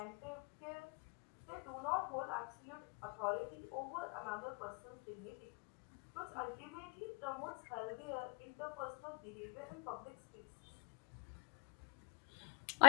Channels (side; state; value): right; quieter; 31.4 dB